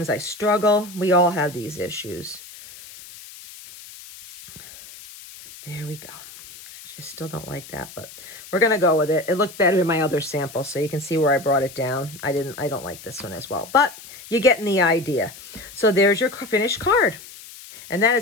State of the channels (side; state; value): left; noise; hiss, 17 dB below the sound